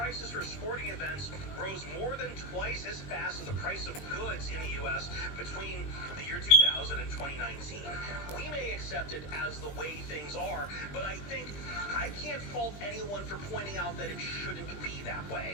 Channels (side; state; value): right; late; 20 ms